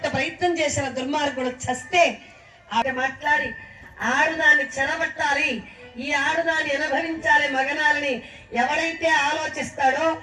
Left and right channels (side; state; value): both; identical; correlation 1.00